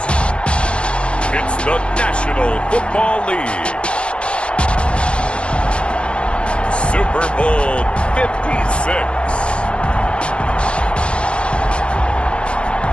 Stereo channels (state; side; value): late; right; 0.058 ms